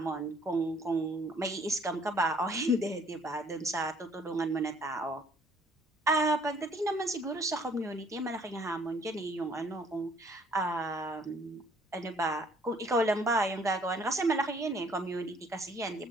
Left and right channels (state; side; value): normal; both; correlation 0.60